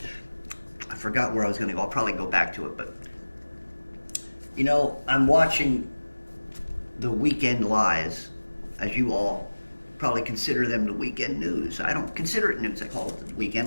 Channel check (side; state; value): both; inverted; correlation -1.00